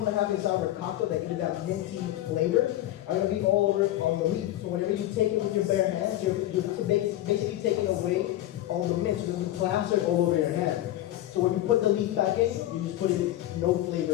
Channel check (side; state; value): right; quieter; 14.2 dB